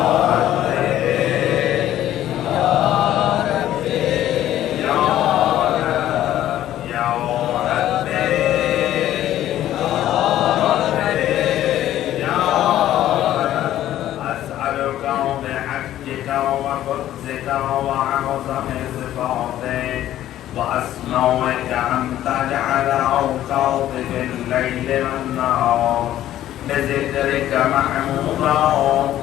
وأسمعك أن تجعل أوقاتي بالليل والنهار بذكرك محمودا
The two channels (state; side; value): quieter; right; 12.8 dB